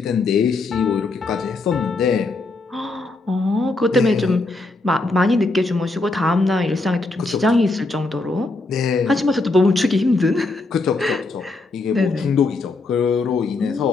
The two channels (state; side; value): quieter; right; 3.3 dB